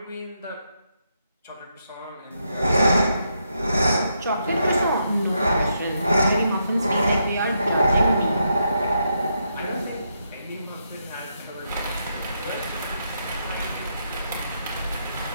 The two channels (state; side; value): inverted; both; correlation -0.80